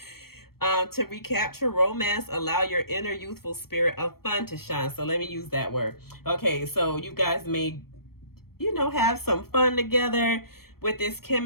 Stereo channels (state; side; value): late; right; 0.94 ms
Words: To recapture romance, allow your inner youthful spirit of fun to shine. So let me use that word. Okay, so you guys may, you know, have some fun together with this